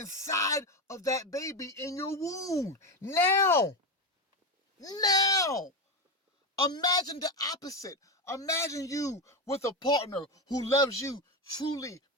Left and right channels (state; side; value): normal; both; correlation 0.14